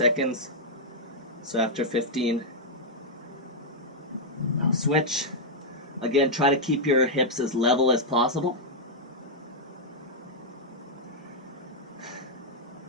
So after 15, I'll switch. Again, try to keep your hips as level as possible.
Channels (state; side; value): normal; both; correlation -0.05